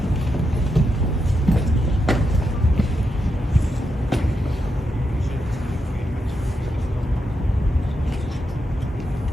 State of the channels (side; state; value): both; normal; correlation 0.85